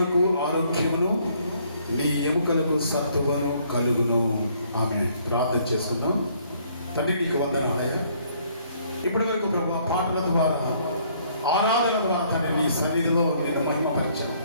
ఆరోగ్యమును, నీ ఎముకలకు సత్తువను కలుగును. ఆమె ప్రార్థన చేసుకుందాం. తండ్రి నీకు వందనాలయ్యా. ఇప్పటి వరకు ప్రభా పాటల ద్వారా, ఆరాధన ద్వారా తండ్రి నీ సన్నిధిలో నేను మహిమపరిచాను.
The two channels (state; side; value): inverted; both; correlation -0.65